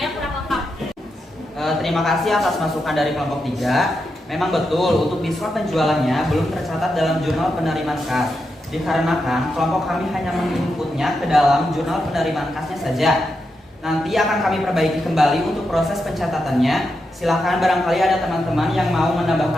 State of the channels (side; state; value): both; normal; correlation 0.86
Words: kurang lengkap. Terima kasih atas masukan dari kelompok 3. Memang betul untuk diskon penjualannya belum tercatat dalam jurnal penerimaan kas. Dikarenakan kelompok kami hanya menginputnya ke dalam jurnal penerimaan kasnya saja. Nanti akan kami perbaiki kembali untuk proses pencatatannya. Silakan barangkali ada teman-teman yang mau